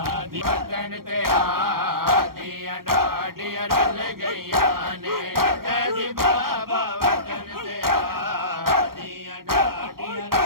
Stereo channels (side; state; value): left; late; 0.93 ms